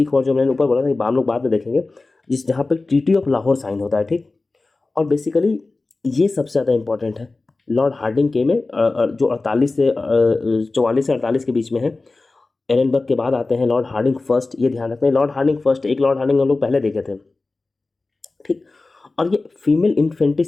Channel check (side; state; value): right; quieter; 3.4 dB